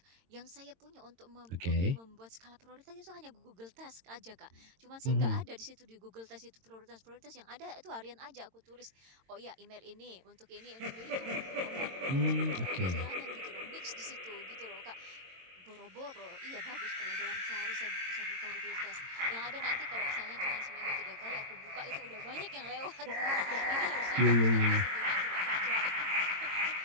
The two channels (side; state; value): left; late; 22 ms